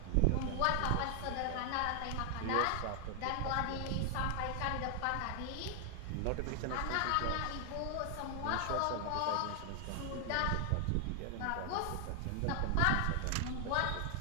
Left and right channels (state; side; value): different; both; correlation 0.00